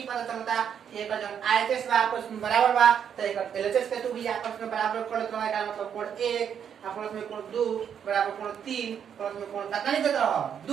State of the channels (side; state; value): left; quieter; 8.2 dB